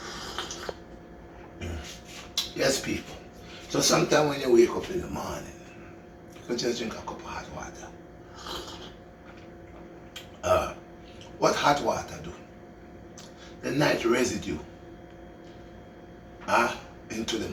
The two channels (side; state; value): both; identical; correlation 1.00